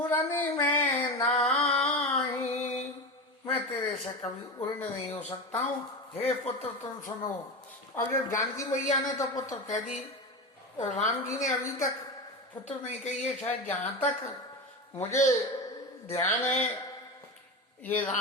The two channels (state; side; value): normal; both; correlation 0.22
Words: में नाही, मैं तेरे से कभी उड़ नहीं हो सकता हूँ, हे पुत्र तुम सुनो। अब जब जानकी मैया ने तो पुत्र कह दी, और राम जी ने अभी तक पुत्र नहीं कही है। शायद जहां तक मुझे ध्यान है, ये